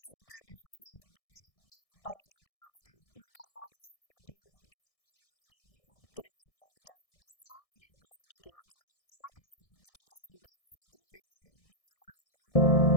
se trata esa fiesta y para que puedas interiorizarte que no es muy buena. Tenemos un invitado especial, así que quédate con nosotros y te presentamos el programa del día de hoy.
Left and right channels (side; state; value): right; late; 1.6 ms